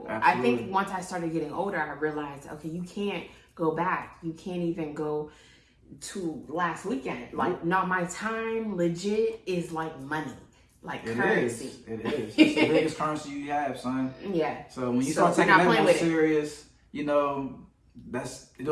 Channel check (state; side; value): identical; both; correlation 1.00